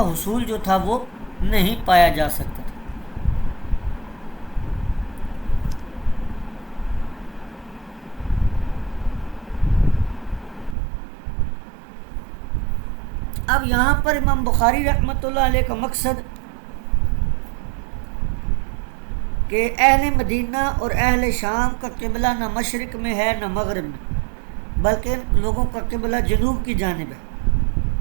حصول جو تھا وہ نہیں پایا جا سکتا تھا۔ اب یہاں پر امام بخاری رحمۃ اللہ علیہ کا مقصد کہ اہل مدینہ اور اہل شام کا قبلہ نہ مشرق میں ہے نہ مغرب میں، بلکہ ان لوگوں کا قبلہ جنوب کی جانب ہے۔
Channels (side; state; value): left; drops out; at 10.8 s